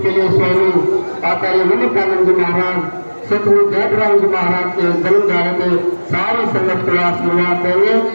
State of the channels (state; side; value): inverted; both; correlation -1.00